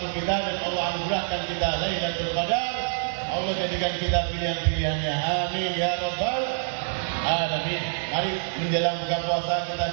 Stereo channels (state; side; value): silent; left; digital silence